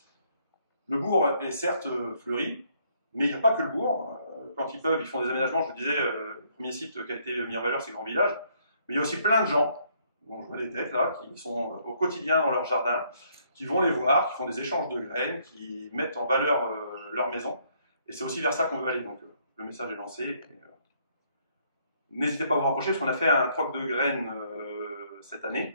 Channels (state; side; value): inverted; both; correlation -0.68